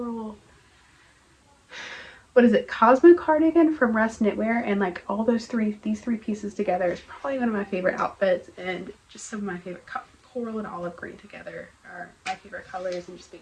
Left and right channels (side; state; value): both; identical; correlation 1.00